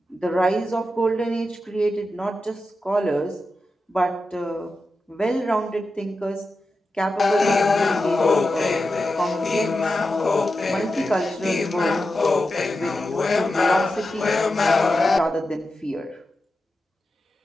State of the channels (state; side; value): normal; both; correlation 0.90